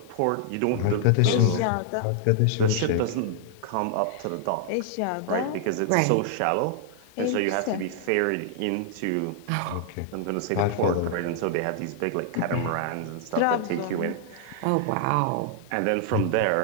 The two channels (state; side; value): different; both; correlation -0.01